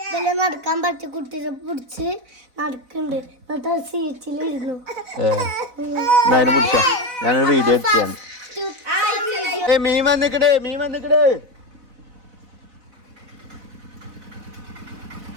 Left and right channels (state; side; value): late; left; 4.0 ms